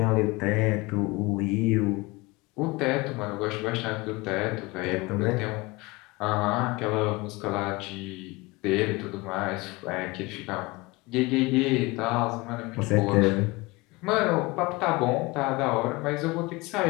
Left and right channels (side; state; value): right; quieter; 23.4 dB